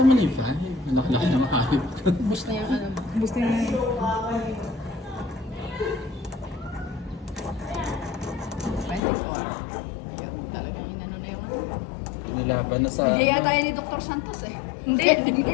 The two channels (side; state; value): right; drops out; at 9.0 s